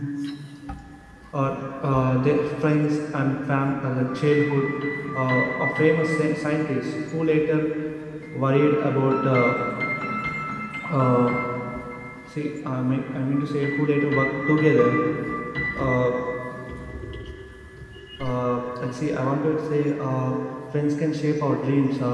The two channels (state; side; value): identical; both; correlation 1.00